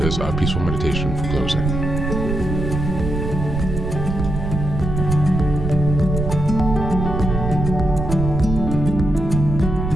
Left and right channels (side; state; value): right; noise; rumble, 3 dB below the sound